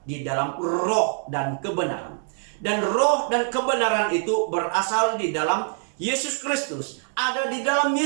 di dalam roh dan kebenaran. Dan roh dan kebenaran itu berasal di dalam Yesus Kristus, ada di dalam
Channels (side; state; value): left; silent; 61 dB below the other